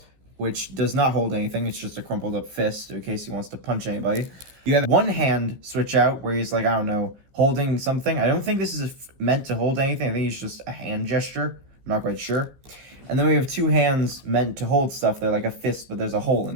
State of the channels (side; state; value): left; late; 15 ms